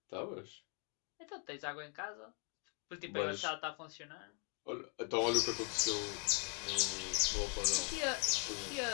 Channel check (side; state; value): right; quieter; 36.4 dB